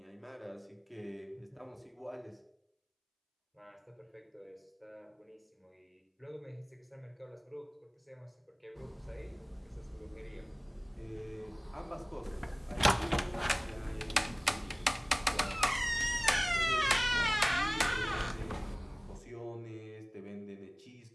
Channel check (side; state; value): both; identical; correlation 1.00